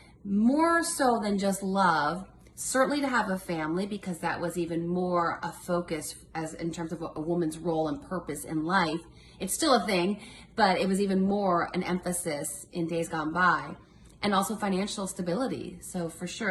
more so than just love. Certainly to have a family, because that was even more a focus as in terms of a woman's role and purpose in life. It's still a thing, but it was even more an emphasis in days gone by. And also financial stability. So for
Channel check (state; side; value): identical; both; correlation 1.00